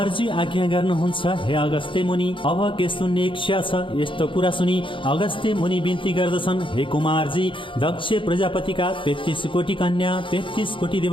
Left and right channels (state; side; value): late; right; 0.25 ms